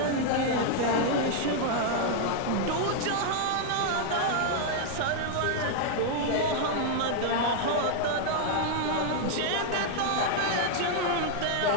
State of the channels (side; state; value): both; different; correlation -0.01